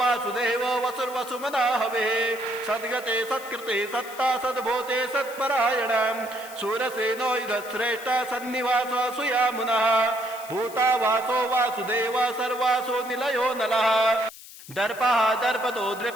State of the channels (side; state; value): left; noise; hiss, 17 dB below the sound